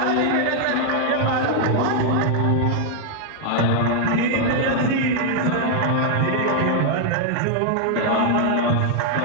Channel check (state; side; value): different; both; correlation 0.00